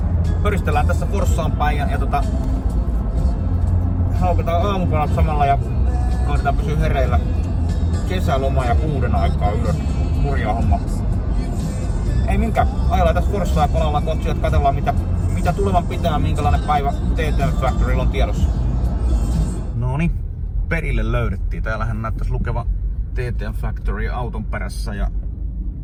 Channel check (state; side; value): identical; both; correlation 1.00